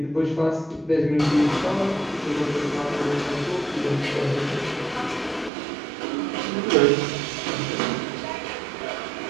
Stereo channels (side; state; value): left; drops out; at 5.5 s